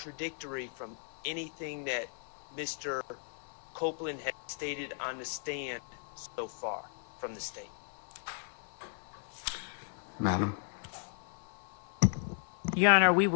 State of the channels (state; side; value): silent; right; 54 dB below the other